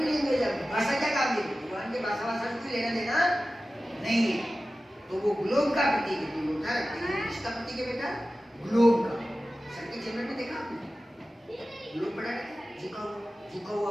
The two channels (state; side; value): normal; both; correlation 0.95